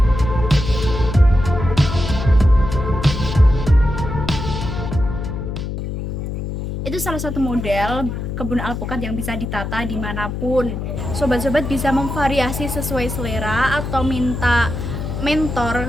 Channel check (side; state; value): left; noise; hum, 5 dB below the sound